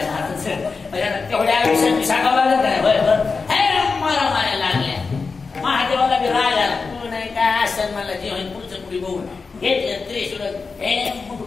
तेवढ्या आयुष्यात सांगावं लागत नाही बरोबर हे मारा माऱ्या लागल्या महादेवाला बी राग आला तू नाही काय असं मला जे होईल पुढचं पुढे बघून घेतलं त्रिशूळ हे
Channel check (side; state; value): right; quieter; 4.6 dB